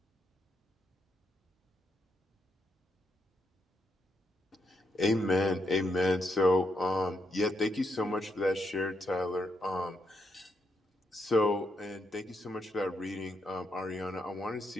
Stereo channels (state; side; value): normal; both; correlation 0.80